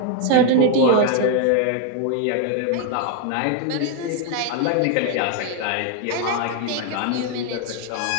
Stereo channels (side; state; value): both; different; correlation 0.01